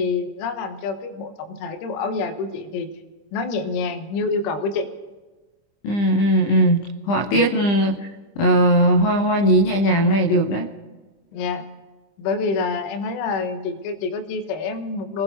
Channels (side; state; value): right; late; 25 ms